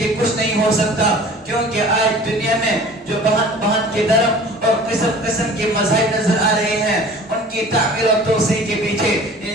کچھ نہیں ہو سکتا، کیونکہ آج دنیا میں جو بہن بہن کے درم اور قسم قسم کے مذاہب نظر آ رہے ہیں، ان کی تعمیر اور توسیع کے پیچھے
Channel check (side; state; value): both; normal; correlation 0.45